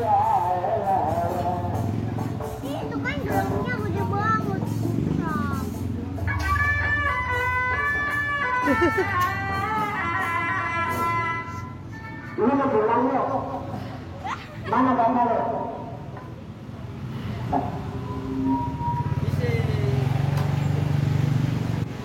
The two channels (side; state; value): both; identical; correlation 1.00